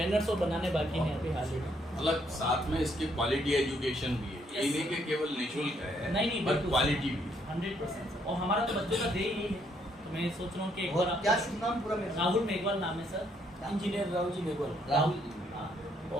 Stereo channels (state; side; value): normal; both; correlation 0.71